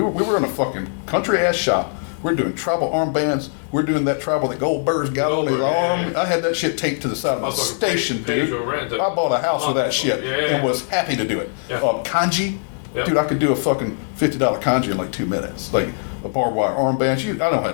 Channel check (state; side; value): silent; right; digital silence